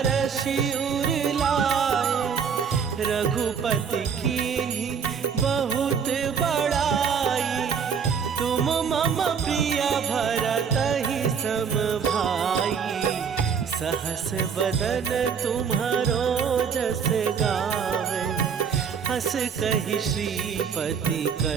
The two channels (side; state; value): left; quieter; 6.7 dB